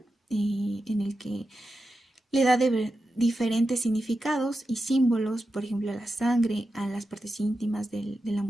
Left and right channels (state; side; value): normal; both; correlation 0.90